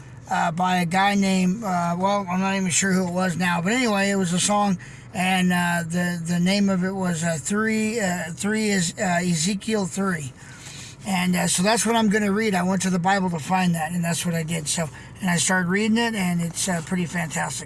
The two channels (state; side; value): identical; both; correlation 1.00